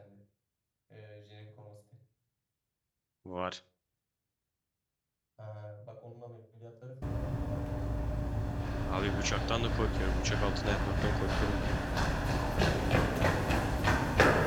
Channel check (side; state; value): both; identical; correlation 1.00